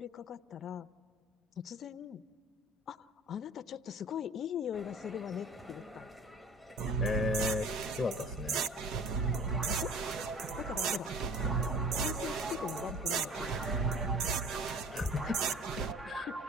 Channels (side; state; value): both; normal; correlation 0.44